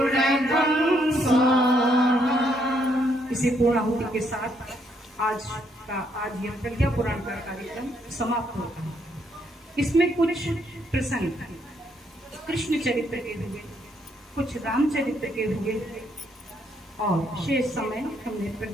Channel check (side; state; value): both; normal; correlation 0.73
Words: स्वाहा। इसी पूर्णाहुति के साथ आज यह प्रज्ञा पुराण का कार्यक्रम समाप्त होता है। इसमें कुछ प्रसंग कृष्ण चरित्र के हुए, कुछ रामचरित्र के हुए और शेष समय हमने